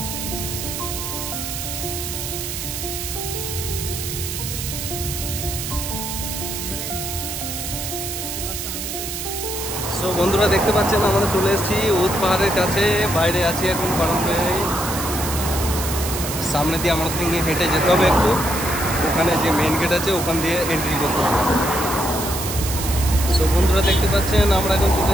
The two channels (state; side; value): noise; right; hiss, 5 dB below the sound